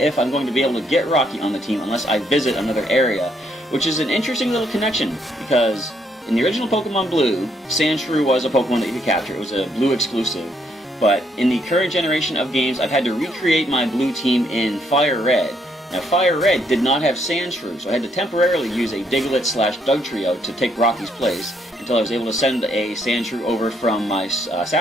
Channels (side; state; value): both; normal; correlation 0.72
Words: I'm going to be able to get Rocky on the team unless I visit another area, which is an interesting little connection, because in the original Pokemon Blue, Sandshrew was a Pokemon that you could capture. It was a Blue exclusive. But in the current generation of games, I've had to recreate my Blue team in Fire Red. Now, Fire Red did not have Sandshrew, so I had to temporarily use a Diglett/Dugtrio to take Rocky's place until I was able to send a Sandshrew over from my